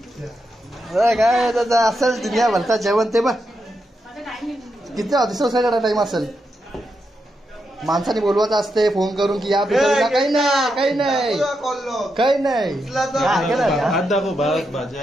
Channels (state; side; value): normal; both; correlation 0.84